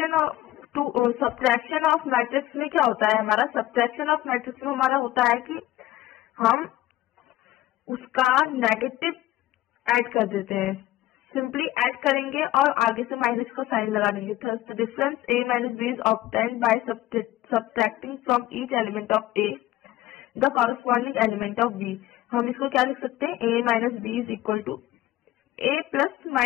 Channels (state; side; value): quieter; right; 15.8 dB